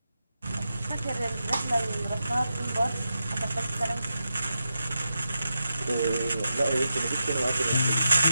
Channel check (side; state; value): both; inverted; correlation -0.88